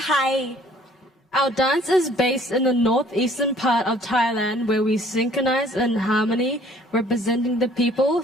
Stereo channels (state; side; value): normal; both; correlation 0.57